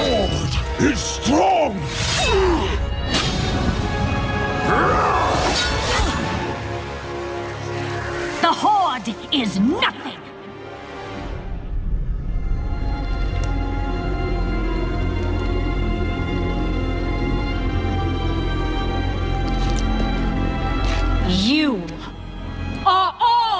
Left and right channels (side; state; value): both; identical; correlation 1.00